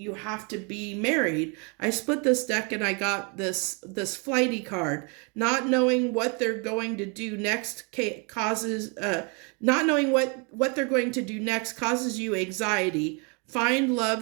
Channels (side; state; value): left; quieter; 33.6 dB